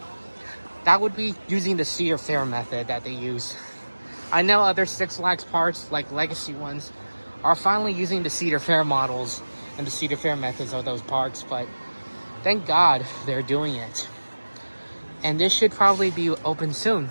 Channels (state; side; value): inverted; both; correlation -1.00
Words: That would be using the Cedar Fair method that they use. I know other Six Flags parks, like legacy ones, are finally using the Cedar Fair models and the Cedar Fair methods of those parks, but thank God they're doing it. And this should probably be open soon